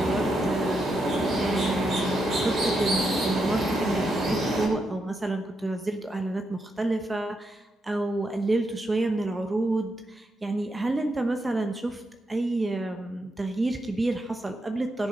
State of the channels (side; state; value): both; normal; correlation 0.83